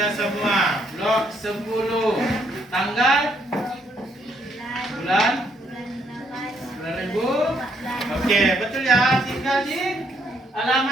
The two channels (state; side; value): normal; both; correlation 0.71